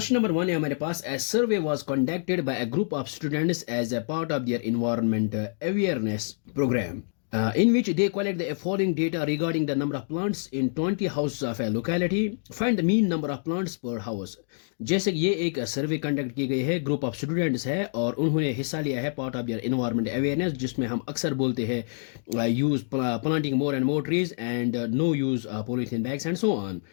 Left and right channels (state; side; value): silent; right; digital silence